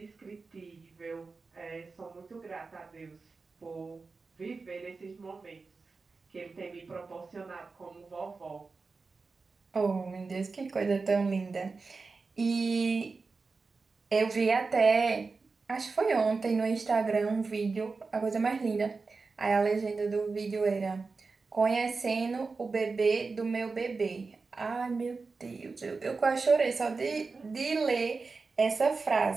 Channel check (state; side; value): quieter; left; 4.3 dB